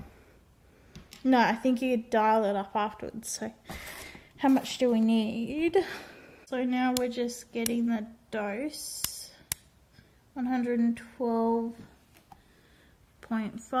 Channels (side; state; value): both; identical; correlation 1.00